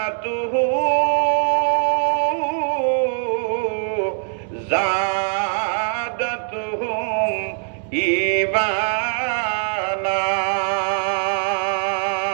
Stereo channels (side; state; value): left; silent; digital silence